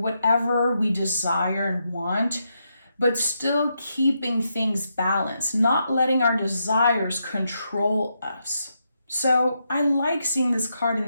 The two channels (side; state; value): both; inverted; correlation -0.82